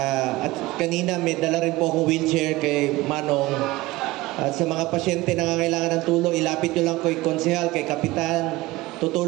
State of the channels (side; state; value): left; quieter; 19.4 dB